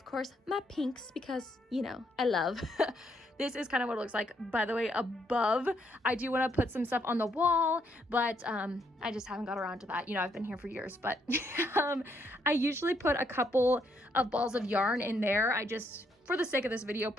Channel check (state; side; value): normal; both; correlation 0.74